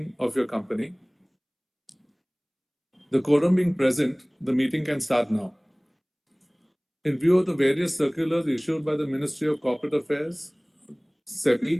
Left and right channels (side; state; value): both; identical; correlation 1.00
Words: of your company. The quorum being present, the meeting can start now. In view of the various circulars issued by the Ministry of Corporate Affairs,